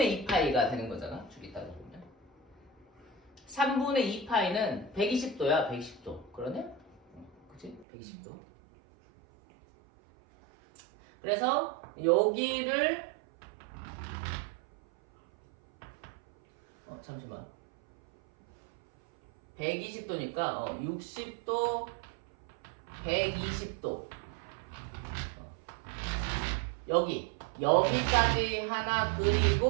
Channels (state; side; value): drops out; left; at 7.9 s